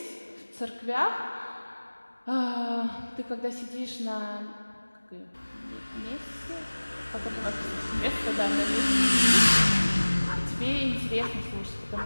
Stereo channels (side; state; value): both; inverted; correlation -1.00